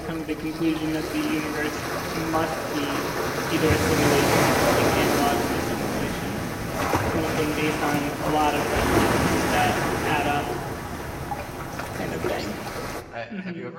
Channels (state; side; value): identical; both; correlation 1.00